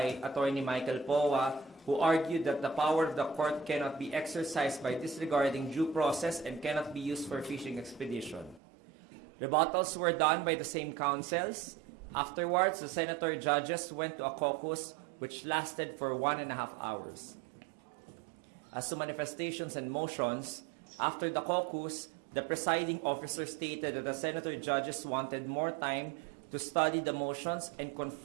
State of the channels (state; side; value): drops out; left; at 8.6 s